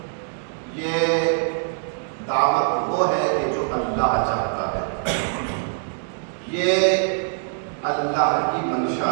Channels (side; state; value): left; silent; 63 dB below the other